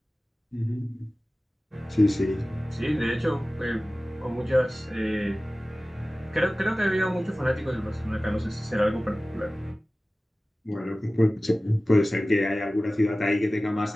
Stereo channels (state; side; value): normal; both; correlation 0.97